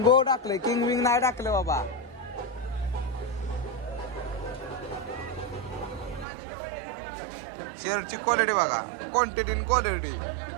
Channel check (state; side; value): drops out; left; at 6.2 s